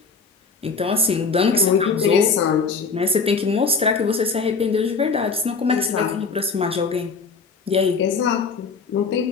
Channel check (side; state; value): right; quieter; 4.8 dB